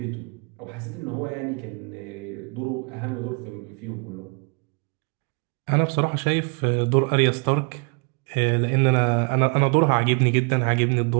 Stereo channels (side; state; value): left; quieter; 36.9 dB